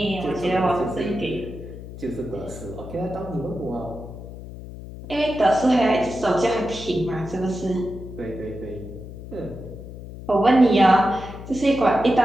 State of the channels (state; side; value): noise; left; hum, 13 dB below the sound